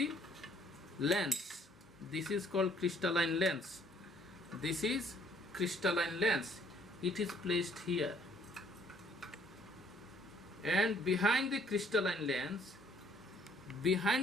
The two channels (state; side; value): normal; both; correlation 0.62